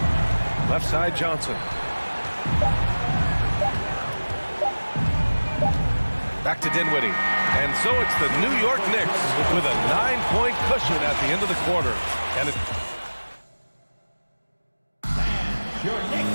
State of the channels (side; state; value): both; inverted; correlation -1.00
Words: Left side, Johnson. Back to Dinwiddie. And so it's the New York Knicks with a 9-point cushion at the end of the quarter. And it...